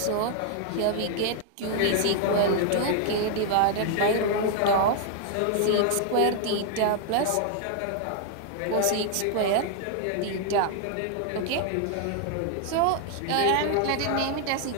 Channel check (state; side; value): different; both; correlation 0.00